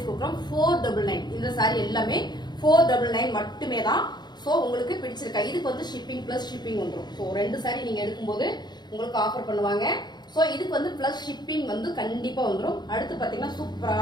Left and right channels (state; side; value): late; right; 0.21 ms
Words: கொடுக்குறோம். 499. இந்த சாரி எல்லாமே 499 மட்டுமே தான். ஸோ உங்களுக்கு பிடிச்சிருக்கா? இதுக்கு வந்து ஷிப்பிங் பிளஸ் ஷிப்பிங் வந்துடும். ஸோ 2 சாரி நீங்க எடுக்கும்போது உங்களுக்கு ஆஃபர் பண்ணுவாங்க. ஸோ இதுக்கு வந்து பிளஸ் ஷிப்பிங் வந்து கண்டிப்பா வந்துடும். அடுத்து பாத்தீங்கன்னா